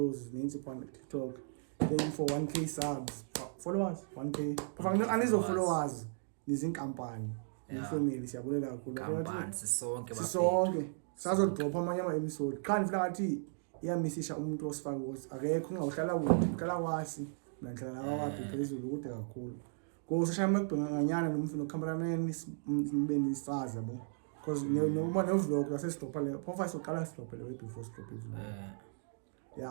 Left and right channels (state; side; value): silent; left; digital silence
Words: ninzi kwa TikTok. Thank you for 1k subs. Followers 1k. Kufanele anizo followers nizinkampani. Ifamily siyabulela kakhulu. Kampani sisonke bafethu. Sisonke. Sazodropha amanye ama-episode. Qha nifila ngathi iyamisisha umuntu osifaka ukuthi akekho ungahlala kude uhlala kwasi nanhlala kwakhe phezulu kude kakhulu. Go social makubhenganyana nomfino cameraman nibe nisazi yabo. Because noma no vlog la sesitopha le profile soqala sitopha le before stop vlog.